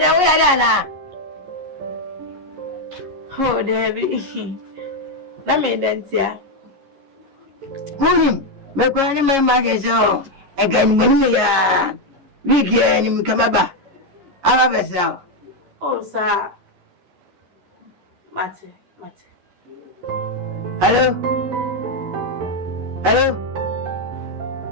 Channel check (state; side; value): late; left; 11 ms